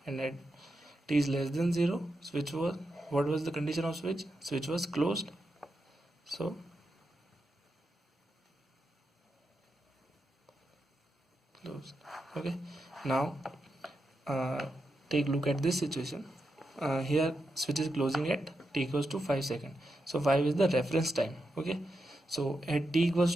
and at t is less than 0, switch was, what was the condition of switch? Switch was closed. So closed. Okay, now take a look at this situation. Here switch is closing at t equals to 5 seconds. So 5 is the reference time. Okay, so at t equals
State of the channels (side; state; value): both; normal; correlation 0.86